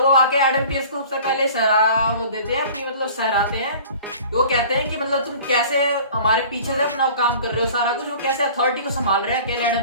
वो आके एडम पियर्स को सबसे पहले वो देते हैं अपनी, मतलब सहराते हैं। वो कहते हैं कि मतलब तुम कैसे हमारे पीछे से अपना काम कर रहे हो, सारा कुछ वो कैसे अथॉरिटी को संभाल रहे हैं अकेले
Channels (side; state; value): both; inverted; correlation -0.45